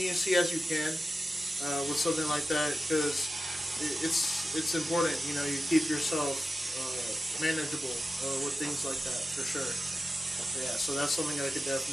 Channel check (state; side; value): normal; both; correlation 0.92